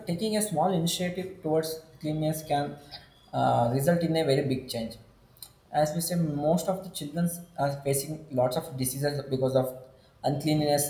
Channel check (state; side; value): identical; both; correlation 1.00